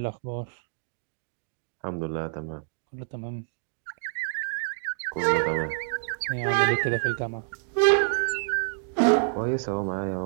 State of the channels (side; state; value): left; silent; digital silence